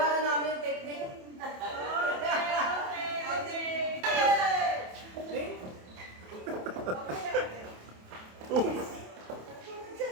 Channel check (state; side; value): late; left; 27 ms